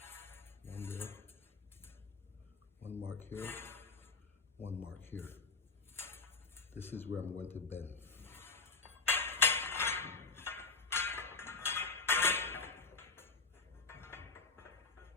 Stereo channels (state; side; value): quieter; right; 4.3 dB